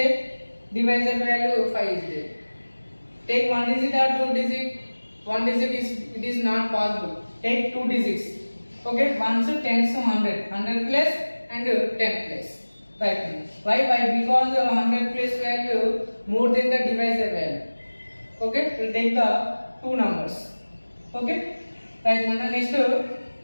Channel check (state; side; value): inverted; both; correlation -1.00